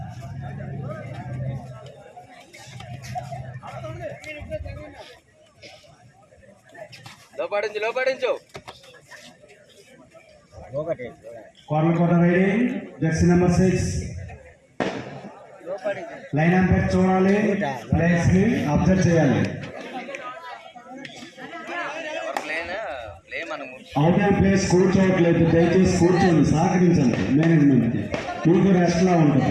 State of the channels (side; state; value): both; identical; correlation 1.00